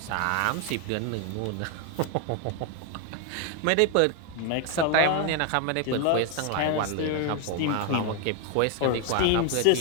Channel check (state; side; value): different; both; correlation 0.01